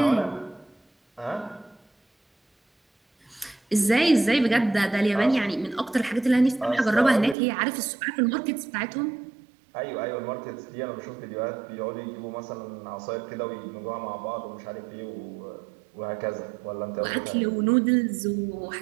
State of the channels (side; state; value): left; drops out; at 7.4 s